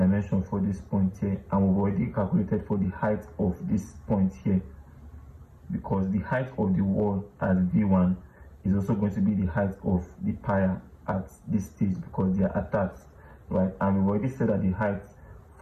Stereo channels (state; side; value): identical; both; correlation 1.00